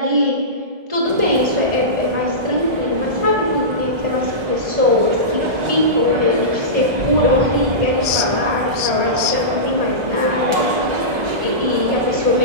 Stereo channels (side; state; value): left; late; 1.2 ms